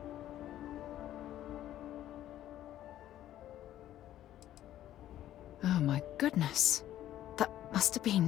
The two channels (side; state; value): right; quieter; 12.7 dB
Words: Oh my goodness. That must have